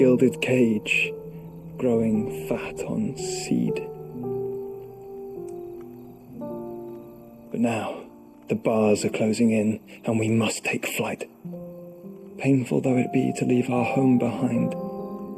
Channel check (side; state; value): both; identical; correlation 1.00